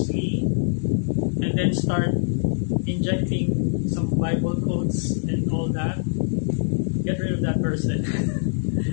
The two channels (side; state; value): right; silent; digital silence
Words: and then start injecting some Bible quotes and all that, get rid of that person.